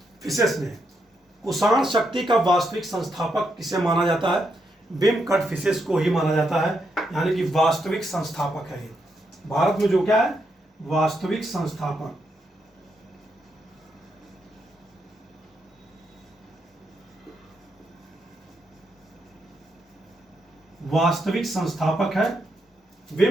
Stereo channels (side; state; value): both; normal; correlation 0.81